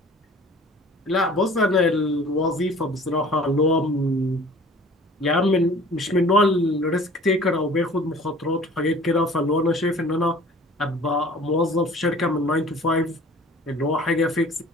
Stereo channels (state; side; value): normal; both; correlation 0.47